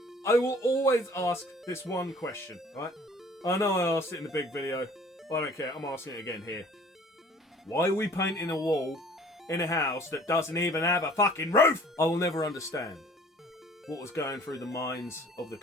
I will always ask this one question, right? I know I asked it in the big video, but I don't care. I'm asking it again here. Why are we painting a wall in a house that doesn't even have a fucking roof? I will never understand what was going through the minds of the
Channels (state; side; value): normal; both; correlation 0.51